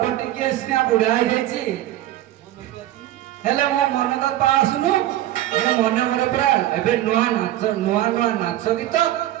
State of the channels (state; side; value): quieter; left; 14.0 dB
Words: ଟିକେ ସିନା ବୁଢା ହେଇଯାଇଛି ହେଲେ ମୋ ମନ ତ ପାସୁନୁ ମୁଁ ମନେ ମନେ ପୁରା ଏବେ ନୂଆ ନାଚ ଗୀତ